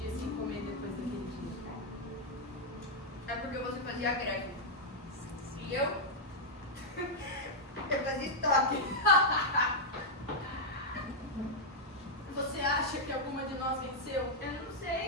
sem comer depois daquele dia. É porque você fazia greve. E eu? Eu fazia estoque. Você acha que alguma de nós venceu? Eu não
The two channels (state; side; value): normal; both; correlation -0.03